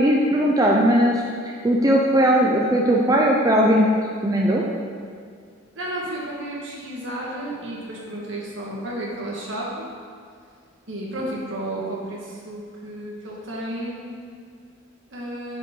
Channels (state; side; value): normal; both; correlation 0.53